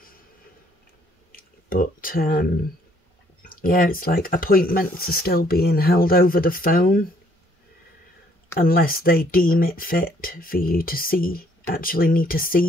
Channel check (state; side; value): normal; both; correlation 0.65